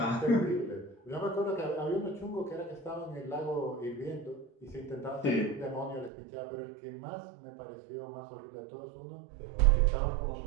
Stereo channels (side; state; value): left; drops out; at 6.1 s